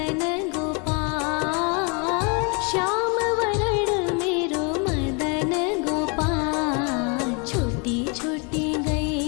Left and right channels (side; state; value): right; quieter; 33.5 dB